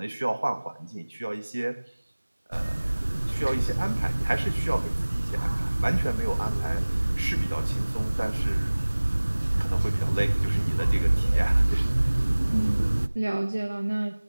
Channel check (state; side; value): inverted; both; correlation -1.00